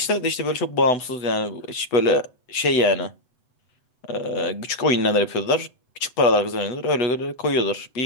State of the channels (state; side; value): late; right; 8.0 ms